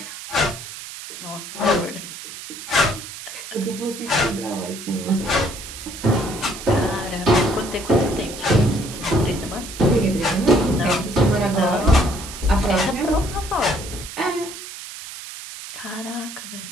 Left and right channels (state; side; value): noise; right; hiss, 11 dB below the sound